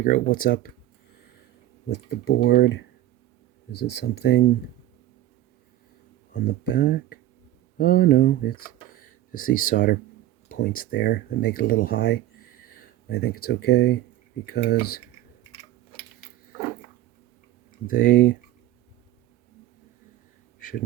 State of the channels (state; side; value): quieter; left; 13.8 dB